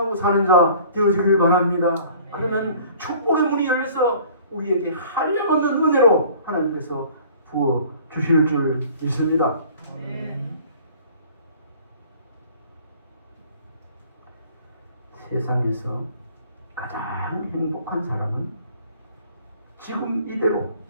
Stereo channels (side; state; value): both; inverted; correlation -0.51